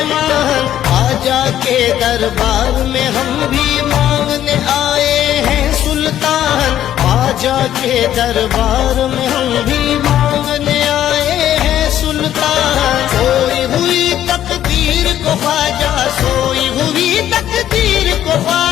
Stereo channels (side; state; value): right; quieter; 11.6 dB